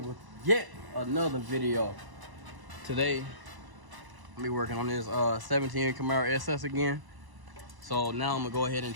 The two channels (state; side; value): late; left; 1.0 ms